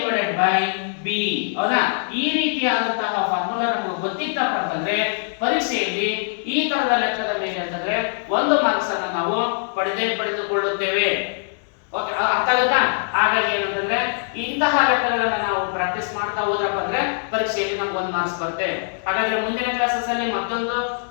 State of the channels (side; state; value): right; silent; 61 dB below the other